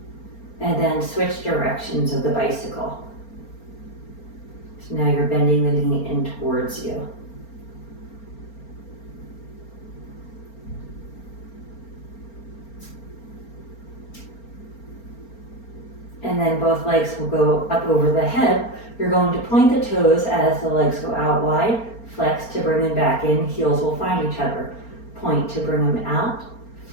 And then switch directions of the bicycle. So now you're bending the knee in towards you. And and then both legs will go up over the head. You're going to point the toes as the legs go out wide, flex to bring them back in, heels will find each other. Point to bring them out,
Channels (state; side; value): late; right; 4.4 ms